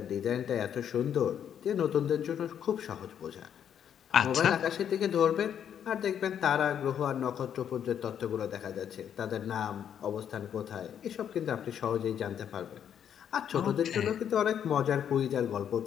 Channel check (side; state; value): right; quieter; 9.0 dB